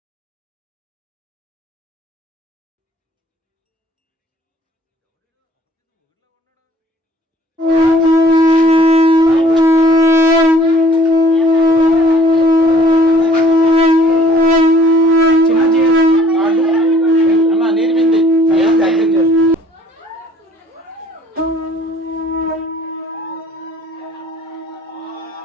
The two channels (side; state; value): both; normal; correlation 0.57